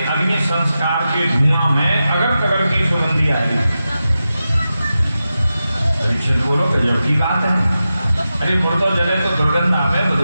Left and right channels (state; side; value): inverted; both; correlation -0.92